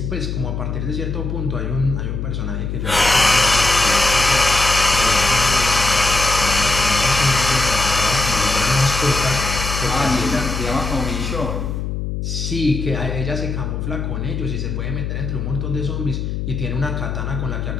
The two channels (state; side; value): noise; left; hum, 4 dB below the sound